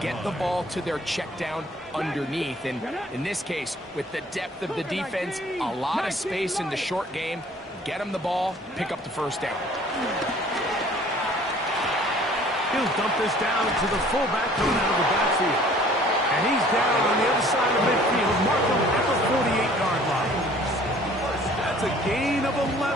the ball to their check down underneath. And in this case, with the depth of the defense, a lot of space in the short game, get them the ball, pick up the 1st down. He'll dump this down to the fullback coming out of the backfield. And he's down on the other side of midfield. Markham at the 48-yard line. That's a gain of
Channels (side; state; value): both; normal; correlation 0.53